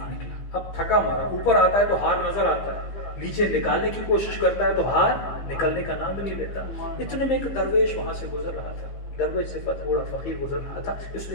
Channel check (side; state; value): right; late; 15 ms